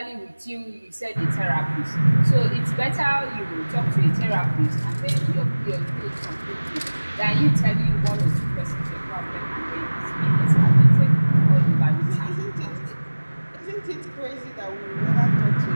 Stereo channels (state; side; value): inverted; both; correlation -1.00